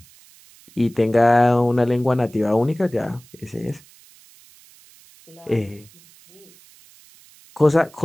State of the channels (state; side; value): noise; right; hiss, 26 dB below the sound